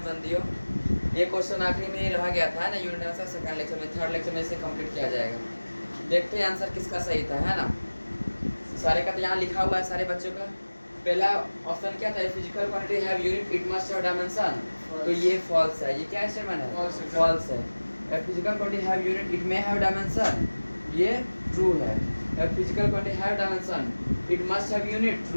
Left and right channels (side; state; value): both; inverted; correlation -1.00